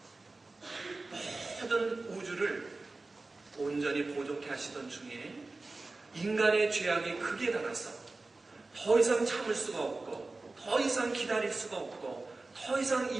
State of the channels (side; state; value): left; quieter; 3.4 dB